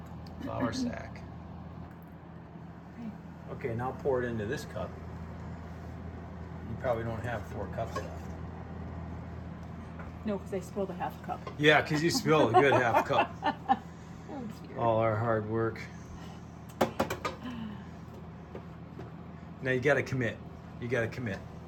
flour sack. Okay, now pour it into this cup. You probably don't have 4 cups left. No, because I spilled a half cup. Yeah, because you spilled a good half cup. Oh, dear. All our hard work. Now you got to commit. You got to commit.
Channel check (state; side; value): identical; both; correlation 1.00